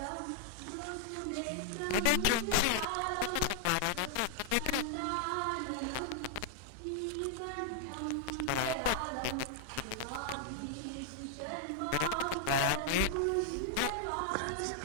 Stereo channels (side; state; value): both; different; correlation 0.00